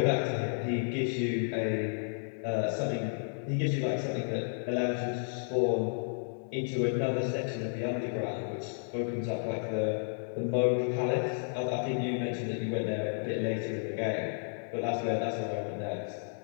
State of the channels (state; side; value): silent; right; digital silence